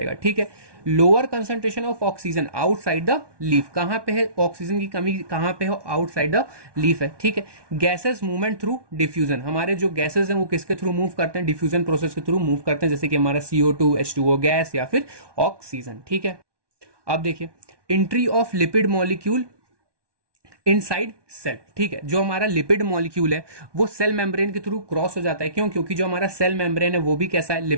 ठीक है। Lower concentration of oxygen outside the leaf, कहां पे है ऑक्सीजन की कमी? कहां पे है? आउटसाइड द लीफ है, ठीक है। गैसेस मूवमेंट थ्रू डिफ्यूजन, हमारे जो गैसेस हैं वो किसके थ्रू मूव करते हैं? डिफ्यूजन प्रोसेस के थ्रू मूव करते हैं, जैसे कि हमारा CO2, H2O गैस या फिर ऑक्सीजन, ठीक है। अब देखिए entry of lipid molecule inside cell, ठीक है। जो हमारा लिपिड मॉलिक्यूल है वो सेल मेम्ब्रेन के थ्रू क्रॉस हो जाता है, क्यों? क्योंकि जो हमारा सेल मेम्ब्रेन है वो भी कैसा है?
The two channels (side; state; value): left; late; 1.2 ms